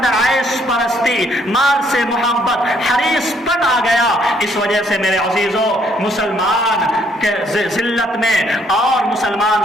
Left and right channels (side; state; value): both; normal; correlation 0.68